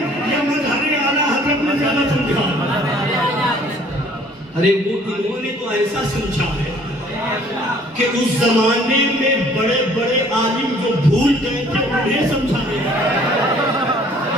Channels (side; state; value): both; normal; correlation 0.56